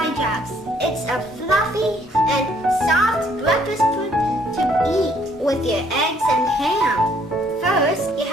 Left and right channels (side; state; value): both; normal; correlation 0.64